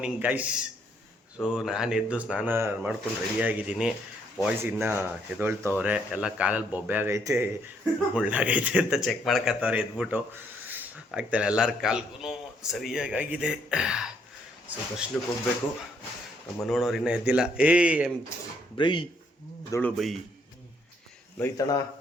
guys. So ನಾನು ಎದ್ದು ಸ್ನಾನ ಮಾಡ್ಕೊಂಡು ರೆಡಿಯಾಗಿದ್ದೀನಿ. ಬಾಯ್ಸ್ ಇನ್ನೂ ಎದೊಳ್ತವ್ರೆ. ಎಲ್ಲ ಕಾಲಲ್ಲಿ ಬೊಬ್ಬೆ ಆಗೈತೆ, ಮುಳ್ಳಾಗೈತೆ ಅಂತ ಚೆಕ್ ಮಾಡ್ಕೊತವ್ರೆ ಎದ್ಬಿಟ್ಟು. ಆಗ್ತಾನೆ ಎಲ್ಲರ ಕಾಲ್ಗೂ ಸರಿಯಾಗಿದೆ. ಸೊ ದರ್ಶನಕ್ಕೆ ಹೋಗ್ಬೇಕು. ನಮ್ಮ ನೋಡೋರು ಇನ್ನೂ ಎದ್ದಿಲ್ಲ. ಬ್ರೈ ದೊಳು ಬೈ ಲೋಯ್ತಣ,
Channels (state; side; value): normal; both; correlation 0.70